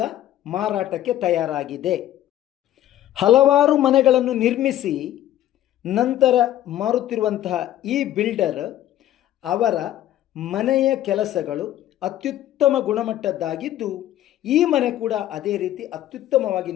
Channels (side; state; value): right; quieter; 12.8 dB